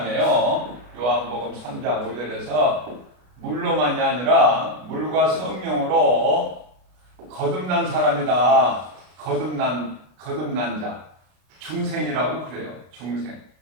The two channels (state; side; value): late; left; 33 ms